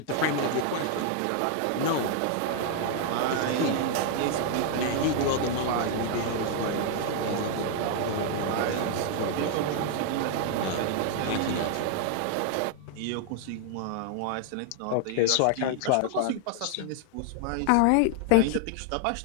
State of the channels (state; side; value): different; both; correlation 0.00